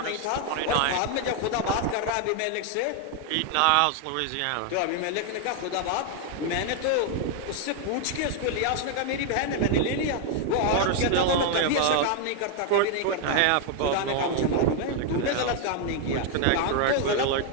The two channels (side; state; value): both; different; correlation 0.00